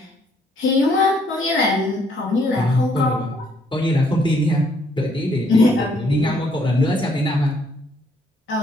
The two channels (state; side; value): normal; both; correlation 0.68